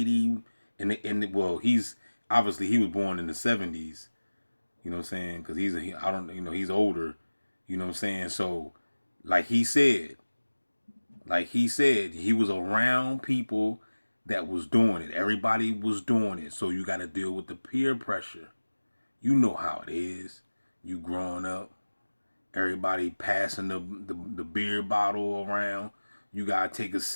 well, he's was born in the 70s. You know what I'm saying? Because he's older. You know what I'm saying? So, like he said, he was around people that was doing it. Everybody was doing it. So you got to deal with the peer pressure. You know how it is. You growing up, everybody passing the beer bottle around. You got to take a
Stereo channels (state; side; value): inverted; both; correlation -1.00